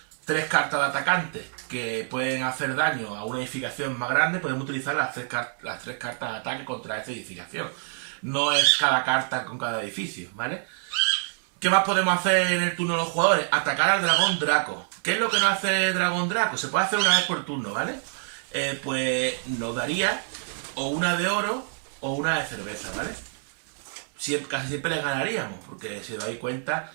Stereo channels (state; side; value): silent; left; digital silence